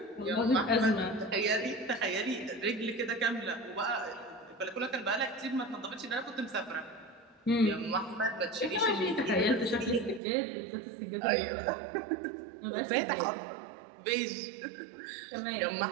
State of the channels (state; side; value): drops out; left; at 10.2 s